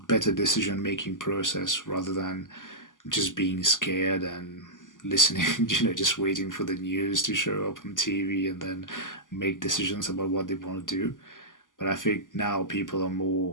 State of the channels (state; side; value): late; right; 0.88 ms